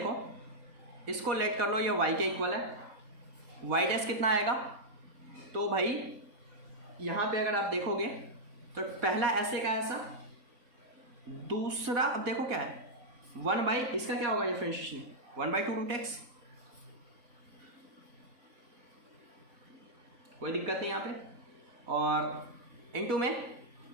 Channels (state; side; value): late; left; 4.2 ms